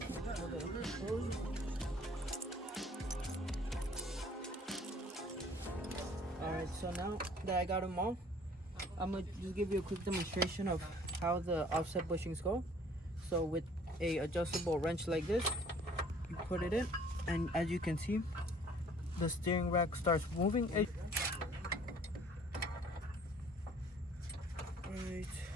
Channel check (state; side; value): normal; both; correlation 0.55